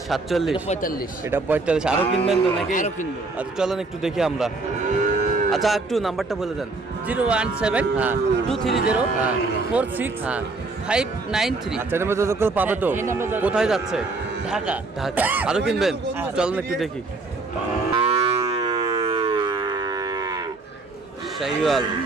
45। এটা 45। আরো কিনবেন তো নাকি? আরো কিনবো। আচ্ছা চলেন একটু দেখি আমরা। আচ্ছা একটু নাম্বারটা বলে দেন। 017 হ্যাঁ 230 হ্যাঁ 46 হ্যাঁ 593। আচ্ছা, এর মধ্যে তো পাবে তো? এই নাম্বারে কোথায় যাচ্ছে? ঢাকা। আরো কিনবেন? চলেন একটু দেখি। শাহিওয়াল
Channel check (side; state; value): left; quieter; 3.5 dB